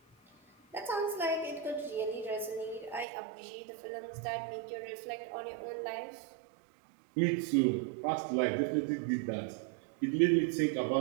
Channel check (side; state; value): left; drops out; at 3.1 s